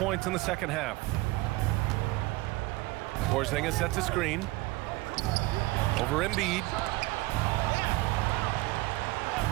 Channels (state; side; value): quieter; left; 20.4 dB